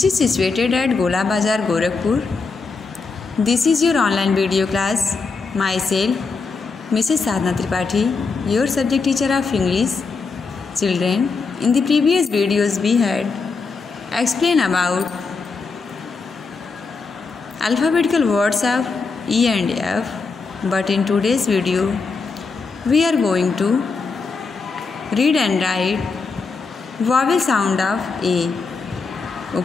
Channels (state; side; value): quieter; right; 4.5 dB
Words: is situated at Gola Bazar, Gorakhpur. This is your online video class. Myself, Mrs. Sadhna Tripathi, your subject teacher of English. Children, in the previous videos we had explained about alphabetical words of E and F. But in today's video, we are going to read and write vowel sound of A.